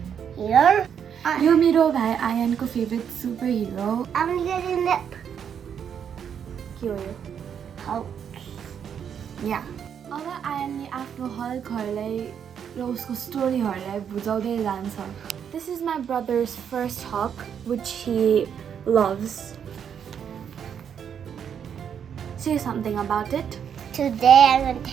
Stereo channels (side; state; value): left; quieter; 8.1 dB